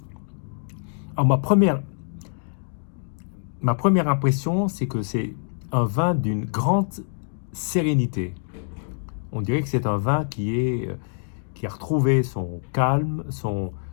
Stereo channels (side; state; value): right; silent; digital silence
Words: Alors, ma première impression, c'est que c'est un vin d'une grande sérénité. On dirait que c'est un vin qui a retrouvé son calme,